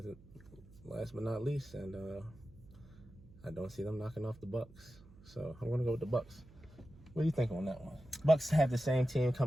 last but not least, and I don't see them knocking off the Bucs. So I'm gonna go with the Bucs. What do you think on that one? Bucs have the same team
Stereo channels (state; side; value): noise; right; hum, 22 dB below the sound